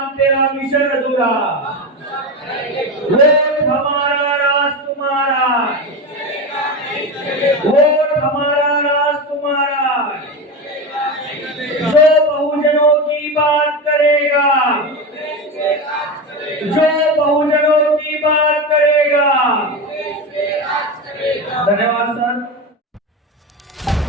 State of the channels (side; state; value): both; normal; correlation 0.20